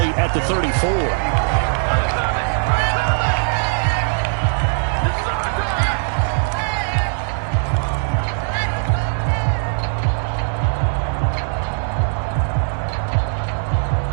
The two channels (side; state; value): left; silent; digital silence